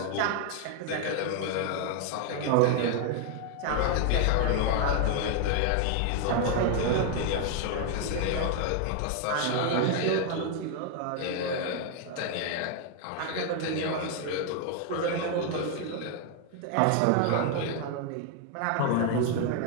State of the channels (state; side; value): different; both; correlation 0.00